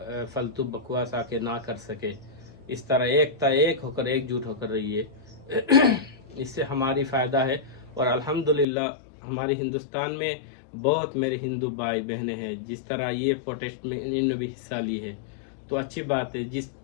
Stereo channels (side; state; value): right; drops out; at 8.7 s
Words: फालतू बकवास आके ना कर सके। इस तरह एकता, एक होकर एकजुट होकर रहिए इससे हमारी फ़ायदा है। और अल्हम्दुलिल्लाह हमारे हिंदुस्तान में बहुत मेरे हिंदू भाई बहनें हैं, जिस तरह ये प्रोटेस्ट में इन्होंने भी हिस्सा ली है, तो अच्छी बात है।